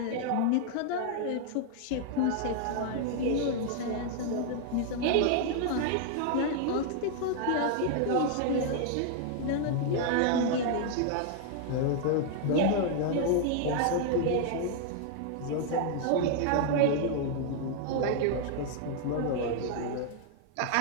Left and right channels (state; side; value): different; both; correlation 0.00